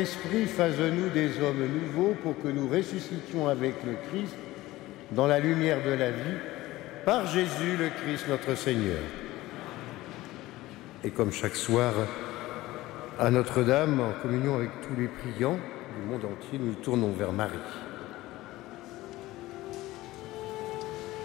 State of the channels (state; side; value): quieter; right; 17.7 dB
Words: fasse de nous des hommes nouveaux pour que nous ressuscitions avec le Christ dans la lumière de la vie, par Jésus le Christ notre Seigneur. Et comme chaque soir, à Notre-Dame, en communion avec tous les priants du monde entier, nous nous tournons vers Marie.